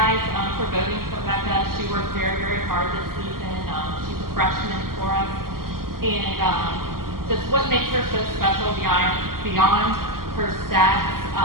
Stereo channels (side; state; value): left; late; 0.92 ms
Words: for voting for Becca. She worked very, very hard this season. She's a freshman for us. And just what makes her so special beyond her stats